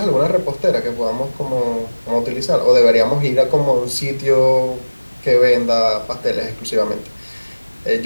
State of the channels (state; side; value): inverted; both; correlation -1.00